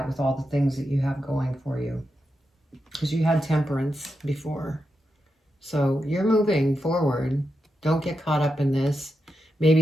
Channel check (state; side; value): normal; both; correlation 0.87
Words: with all the things that you have going for you, because you had Temperance before. So you're moving forward. Don't get caught up in this.